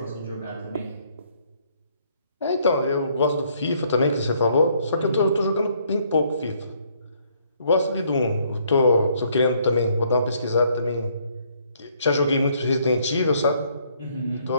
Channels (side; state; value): both; inverted; correlation -0.67